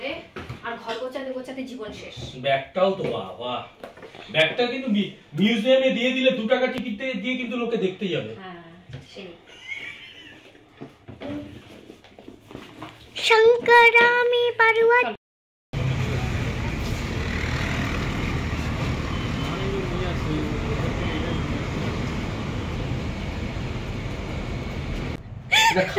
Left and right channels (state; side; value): identical; both; correlation 1.00